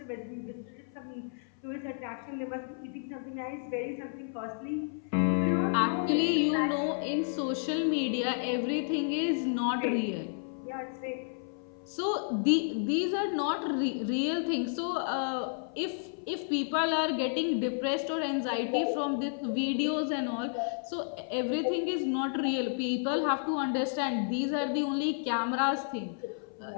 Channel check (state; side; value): silent; right; 57 dB below the other